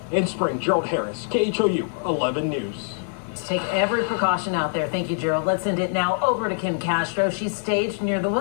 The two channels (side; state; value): right; silent; digital silence